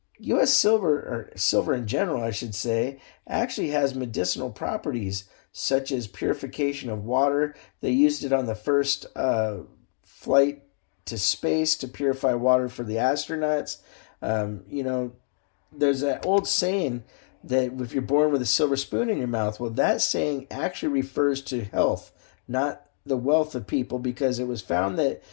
U.S. silver, or silver in general, I should say, actually has medicinal properties such as purification of water. They used it on the first flight to space to purify water for the astronauts. There's that old saying that if you're born with a silver spoon in your mouth, well, that saying actually refers to health, not the wealth of people, because it was found that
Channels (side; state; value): right; silent; digital silence